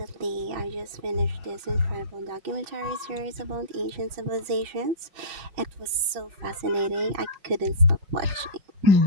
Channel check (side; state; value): left; late; 5.5 ms